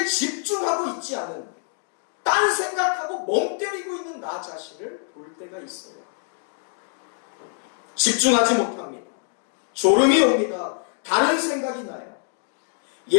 집중하고 있지 않은, 딴 생각하고 멍 때리고 있는 나 자신을 볼 때가 있어요. 집중하지 못합니다. 졸음이 옵니다. 다른 생각이 나요.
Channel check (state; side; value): silent; right; 58 dB below the other